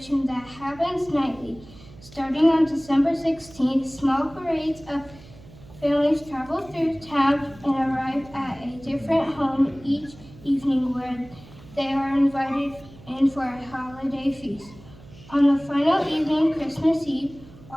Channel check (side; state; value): right; noise; hum, 21 dB below the sound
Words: that happens nightly. Starting on December 16th, small parades of families travel through town and arrive at a different home each evening where they are invited in for a holiday feast. On the final evening, Christmas Eve,